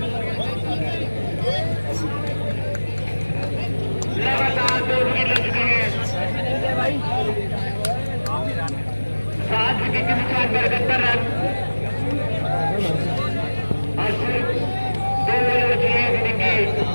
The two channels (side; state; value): both; inverted; correlation -1.00